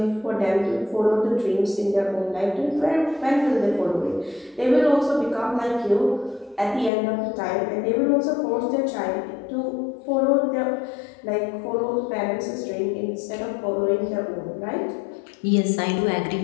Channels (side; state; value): right; drops out; at 6.9 s